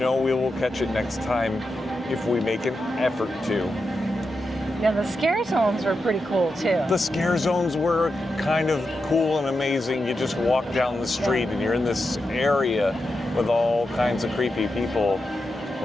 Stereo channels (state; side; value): normal; both; correlation 0.88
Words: we will catch it next time if we make an effort to. Yeah, the scare zones were pretty cool too. The scare zones were kind of cool and amazing. You just walk down the street and you're in this area with all kinds of creepy people,